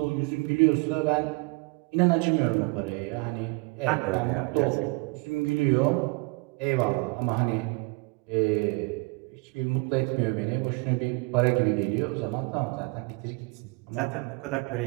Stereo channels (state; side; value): quieter; left; 28.7 dB